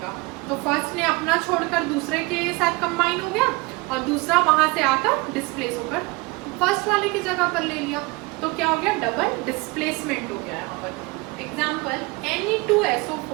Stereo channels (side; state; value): left; quieter; 25.0 dB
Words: तो फर्स्ट ने अपना छोड़कर दूसरे के साथ कंबाइन हो गया और दूसरा वहां से आकर डिस्प्लेस होकर फर्स्ट वाले की जगह पर ले लिया, तो क्या हो गया, डबल डिस्प्लेसमेंट हो गया यहाँ पर। एग्जाम्पल